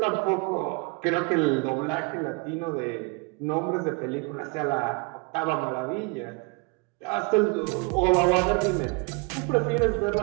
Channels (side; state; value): left; quieter; 30.0 dB